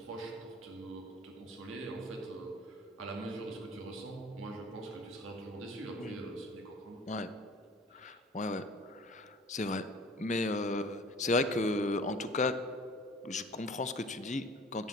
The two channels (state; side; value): normal; both; correlation 0.47